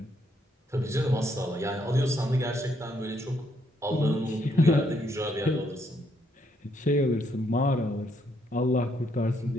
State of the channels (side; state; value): both; normal; correlation 0.73